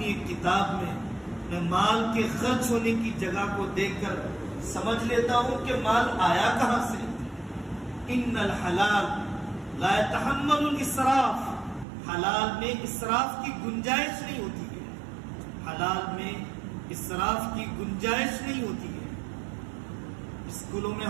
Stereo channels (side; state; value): left; drops out; at 11.9 s